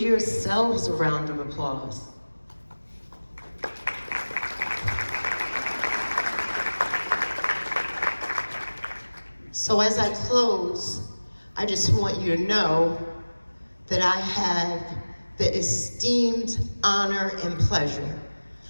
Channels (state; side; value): inverted; both; correlation -1.00